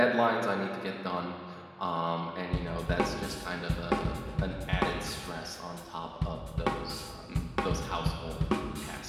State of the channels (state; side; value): identical; both; correlation 1.00